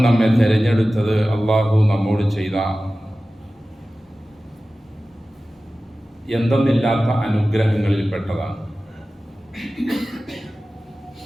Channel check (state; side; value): normal; both; correlation 0.96